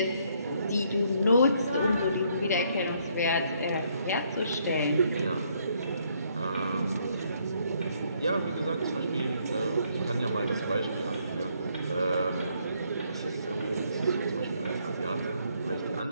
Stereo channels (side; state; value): both; inverted; correlation -0.70